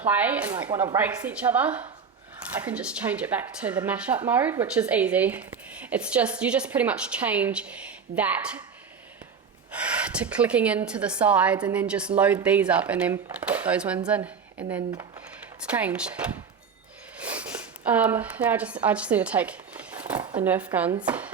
play and like want to race each other, I can just change it back to the mashup mode, which is easy. It's just, you just pretty much change that to clicking into the sides and then just load these up and then put those ones in, and then it's changed. Now I just need to take the Nerf guns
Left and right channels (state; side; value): quieter; left; 6.2 dB